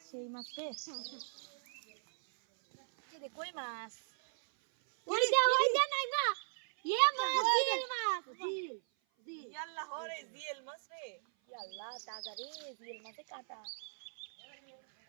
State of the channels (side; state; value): left; silent; 53 dB below the other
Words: সেই মাছ রে। এই দে কই মাছ, ওই দে নাই মা, ইয়ে মাছ জিল মাছ জিল জিল। ইয়াল্লা হরে জিএল মাছ রে। ইয়াল্লা তাজা রে, জিল মাছে কাটা।